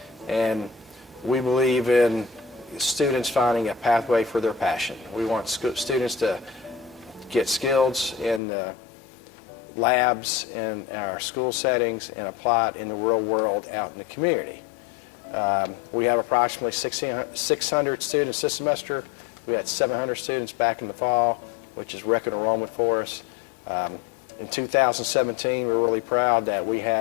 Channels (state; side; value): drops out; right; at 8.4 s